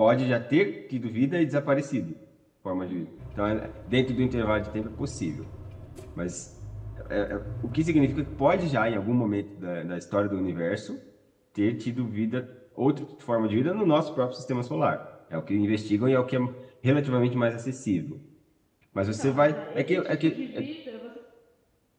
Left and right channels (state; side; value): identical; both; correlation 1.00